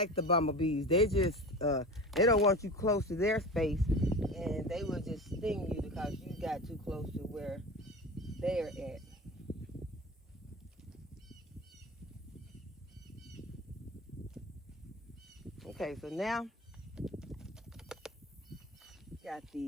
the bumblebees. They just they don't want you close to their space, and they will just sting you because you got too close to where they're at. Okay, so now got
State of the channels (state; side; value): normal; both; correlation 0.32